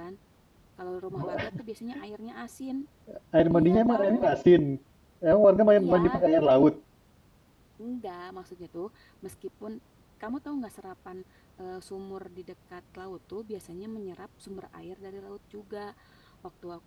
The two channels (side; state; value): both; identical; correlation 1.00